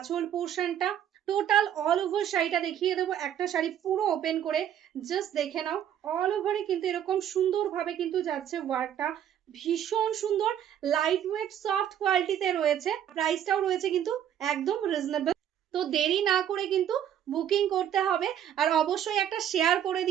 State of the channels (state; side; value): quieter; left; 10.1 dB